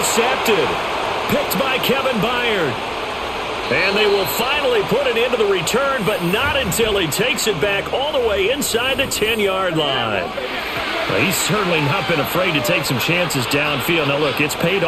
Picked by Kevin Byard. And they will finally put it into the return, but not until he takes it back all the way inside the 10-yard line. Well, he's certainly not been afraid to take some chances downfield. Now, look, it's paid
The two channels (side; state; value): right; noise; hum, 26 dB below the sound